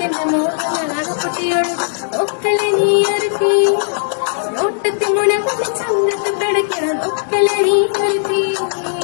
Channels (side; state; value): right; silent; 68 dB below the other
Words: മോഹങ്ങൾ അകപ്പൊട്ടിയൊഴുകും ഒക്കലെ നീ ഇറക്കി നോട്ടത്തി മുന കൊണ്ട് ചങ്കത്ത് പിടയ്ക്കണം ഒക്കലെ നീ ഇറക്കി